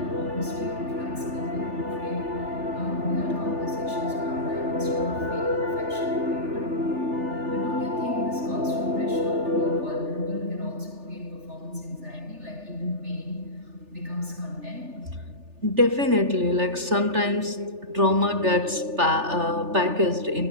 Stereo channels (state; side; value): late; left; 3.4 ms